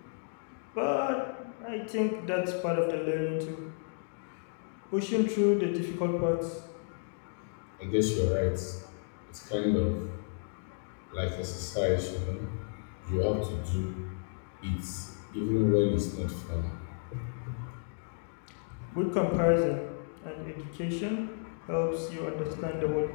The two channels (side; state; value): right; silent; digital silence